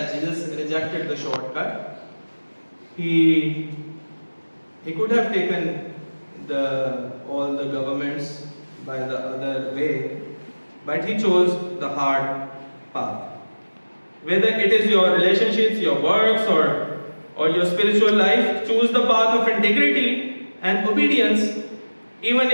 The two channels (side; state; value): both; inverted; correlation -1.00